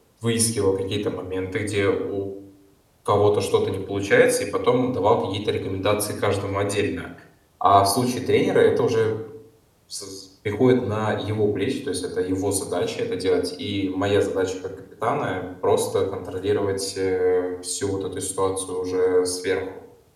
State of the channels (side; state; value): both; identical; correlation 1.00